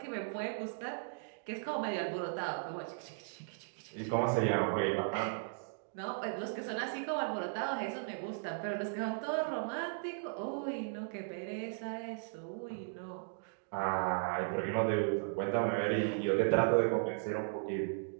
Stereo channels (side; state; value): left; silent; digital silence